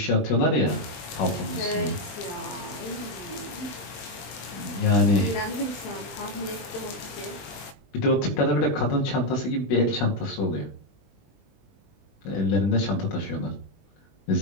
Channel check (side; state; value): right; late; 20 ms